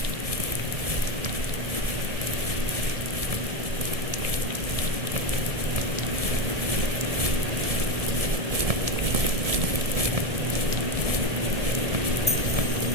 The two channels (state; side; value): late; left; 1.7 ms